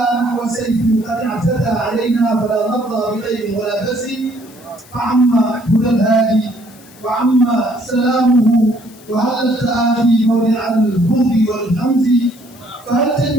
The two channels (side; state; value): left; noise; hiss, 24 dB below the sound